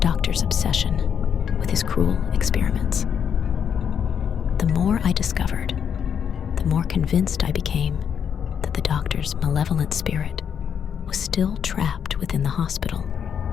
obsession with his cruel experiments. The more I discovered, the more convinced I became that the doctor's malevolent spirit was still trapped within the hospital,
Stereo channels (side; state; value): right; quieter; 7.8 dB